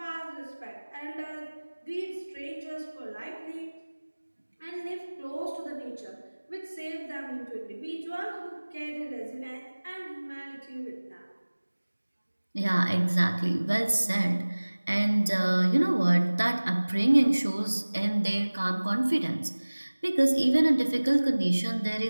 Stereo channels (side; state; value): both; inverted; correlation -1.00